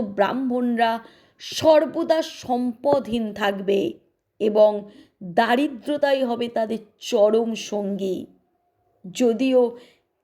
ব্রাহ্মণরা সর্বদা সম্পদহীন থাকবে এবং দারিদ্রতাই হবে তাদের চরম সঙ্গী। যদিও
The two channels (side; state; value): both; identical; correlation 1.00